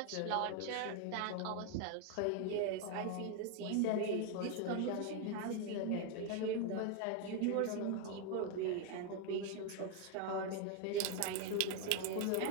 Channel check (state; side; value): different; both; correlation 0.01